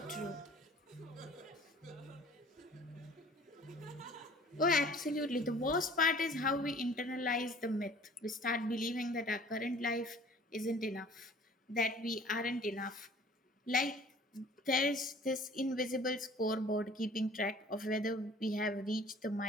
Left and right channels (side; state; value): both; normal; correlation 0.50